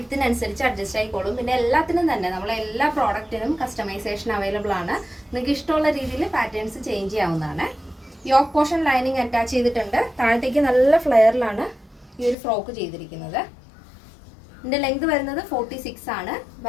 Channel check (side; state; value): right; drops out; at 12.4 s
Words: അഡ്ജസ്റ്റ് ആയിക്കോളും. പിന്നെ എല്ലാത്തിനും തന്നെ നമ്മളെ എല്ലാ പ്രോഡക്റ്റിനും കസ്റ്റമൈസേഷൻ അവൈലബിൾ ആണ്. നിങ്ങൾക്ക് ഇഷ്ടമുള്ള രീതിയിൽ പാറ്റേൺസ് ചേഞ്ച് ചെയ്യാവുന്നതാണ്. യോക്ക് പോർഷൻ ലൈനിങ് അറ്റാച്ച് ചെയ്തിട്ടുണ്ട്. താഴത്തേക്ക് നല്ല ഫ്ലെയറിലാണ് ഈ ഒരു ഫ്രോക്ക് ചെയ്തിരിക്കുന്നത്. ഇതിൻ്റെ ലെങ്ത് വരുന്നത് 46 ആണ്.